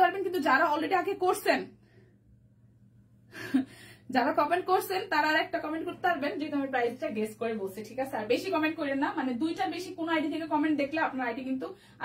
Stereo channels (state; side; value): identical; both; correlation 1.00